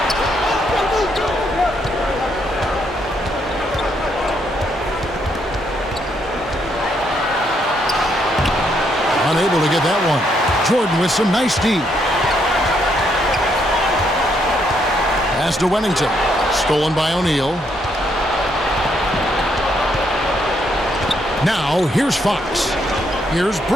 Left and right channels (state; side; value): normal; both; correlation 0.74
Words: Unable to get that one. Jordan with some nice D. Pass to Wennington. Stolen by O'Neal. Now, here's Fox. Here's